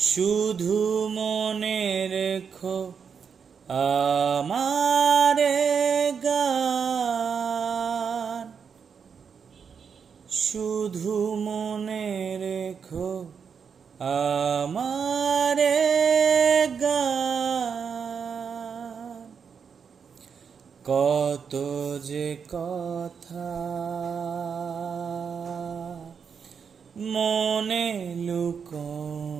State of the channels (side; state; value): left; quieter; 6.5 dB